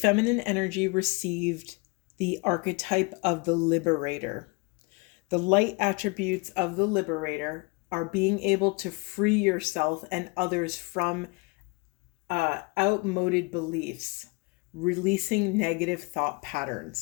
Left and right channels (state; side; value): quieter; right; 28.5 dB